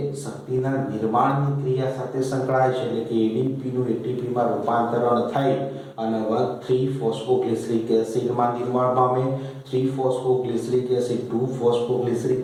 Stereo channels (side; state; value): both; identical; correlation 1.00